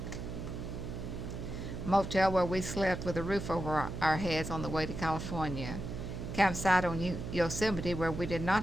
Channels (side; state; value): right; noise; hum, 6 dB below the sound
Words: Motel where we slept with a roof over our heads on the way to California. Campsite on Yosemite where we did not